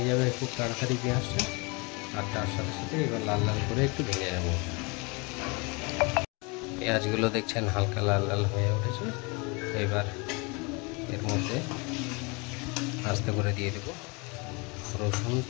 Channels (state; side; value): quieter; right; 29.3 dB